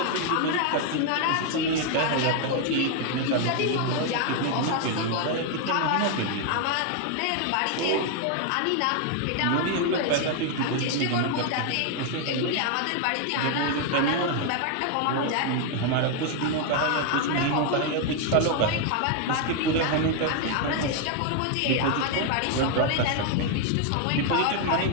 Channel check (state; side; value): different; both; correlation 0.01